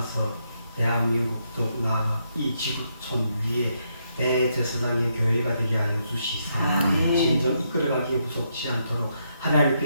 대한민국 더욱 나아가 이 지구촌 위에 대제사장의 교회가 되게 하여 주시사 진정 이끌어가기에 부족치 않도록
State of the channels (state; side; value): inverted; both; correlation -0.78